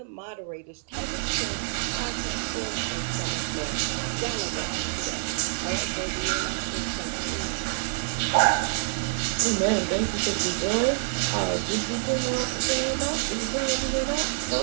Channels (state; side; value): silent; left; 60 dB below the other